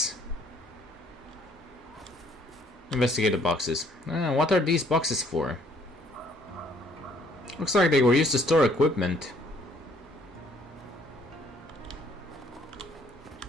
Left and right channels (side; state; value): both; normal; correlation 0.63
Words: Investigate the boxes. What are these boxes for? Looks like they were used to store equipment.